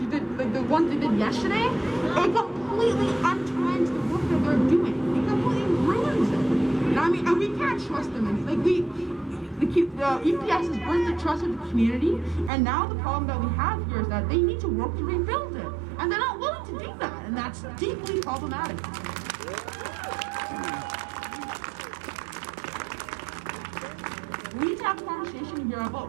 they did yesterday, it completely untwines the work that they're doing. It completely ruins it. And we can't trust them. The EPS has burned the trust of the community, and now the problem that we have here is that they need to work to rebuild it, and they're not willing to do that, and that's deeply problematic. We need to have a conversation here about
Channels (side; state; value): left; drops out; at 12.5 s